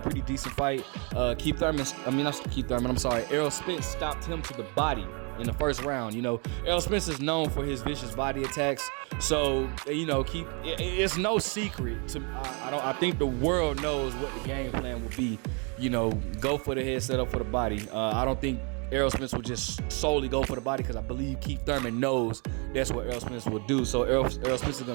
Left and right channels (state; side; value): quieter; left; 34.4 dB